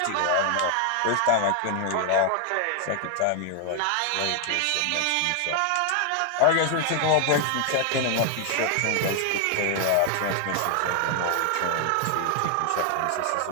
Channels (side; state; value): both; different; correlation 0.00